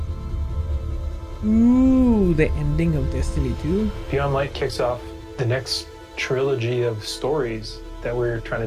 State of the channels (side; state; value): both; identical; correlation 1.00